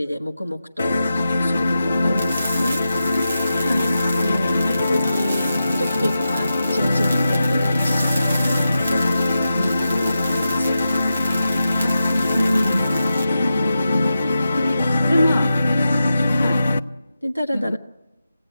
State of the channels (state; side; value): inverted; both; correlation -0.91